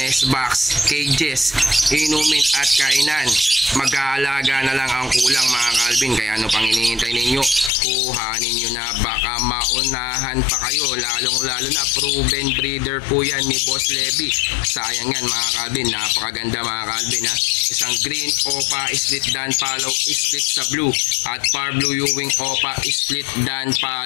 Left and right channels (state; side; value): drops out; right; at 7.7 s